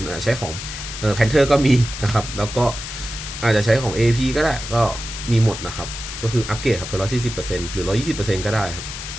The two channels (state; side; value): noise; left; hiss, 8 dB below the sound